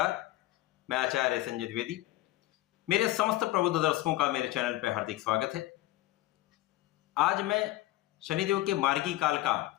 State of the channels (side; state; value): right; quieter; 16.7 dB